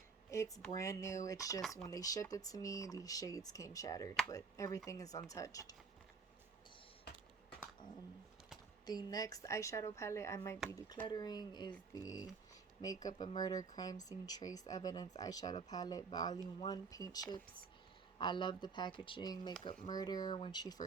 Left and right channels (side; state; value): left; quieter; 4.9 dB